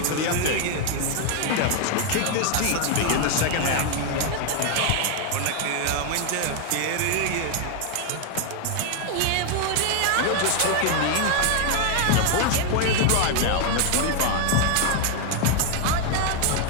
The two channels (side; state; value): both; different; correlation 0.01